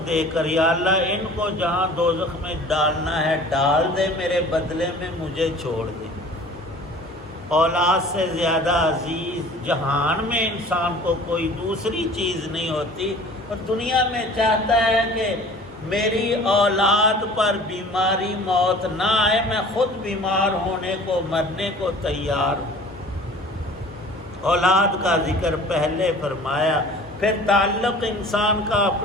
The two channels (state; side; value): normal; both; correlation 0.46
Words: دے کر. یا اللہ ان کو جہاں دوزخ میں ڈالنا ہے ڈال دے، میرے بدلے میں مجھے چھوڑ دے. اولاد سے زیادہ عزیز جہان میں انسان کو کوئی دوسری چیز نہیں ہوتی، اور دنیا میں چاہتا ہے کہ میری اولاد پر بیماری موت نہ آئے، میں خود بیمار ہونے کو مرنے کو تیار ہوں. اولاد کا ذکر پہلے فرمایا. پھر تعلق انسان کا